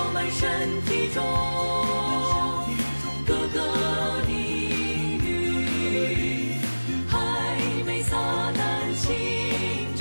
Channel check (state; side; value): inverted; both; correlation -1.00